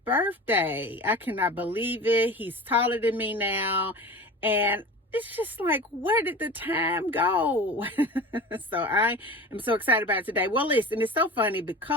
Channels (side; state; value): both; normal; correlation 0.34